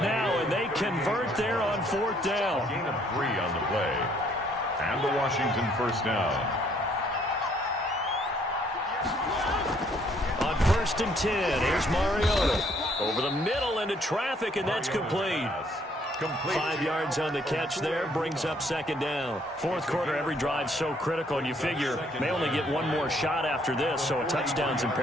and they convert there on 4th down. Gain of 3 on the play. And the Washington first down. On 1st and 10, here's Mariota. Over the middle into traffic, and that's complete. 5 yards on the catch there, brings up 2nd down. 4th quarter, every drive's so critical, and you figure they only get one more shot after this, so a touchdown's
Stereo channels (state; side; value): normal; both; correlation 0.65